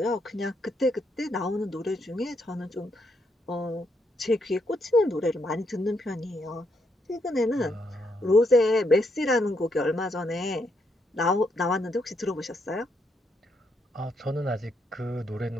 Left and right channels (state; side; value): normal; both; correlation 0.77